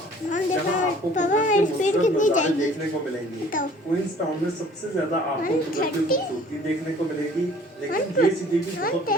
जहाँ आपको नज़ारे देखने को मिलेंगे। क्वींस टाउन में सबसे ज्यादा आपको कुदरती खूबसूरती देखने को मिलेगी लेकिन ये सिटी भी बहुत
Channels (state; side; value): normal; both; correlation 0.52